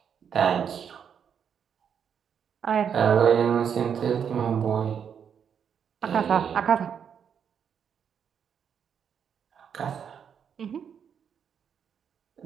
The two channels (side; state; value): left; quieter; 7.7 dB